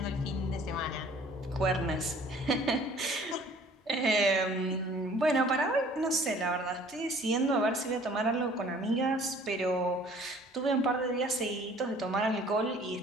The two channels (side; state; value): both; normal; correlation 0.53